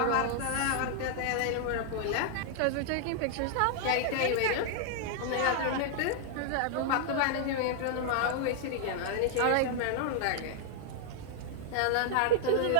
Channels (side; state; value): both; different; correlation 0.00